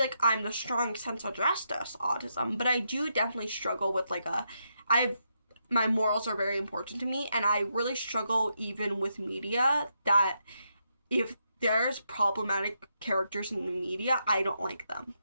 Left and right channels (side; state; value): both; inverted; correlation -0.81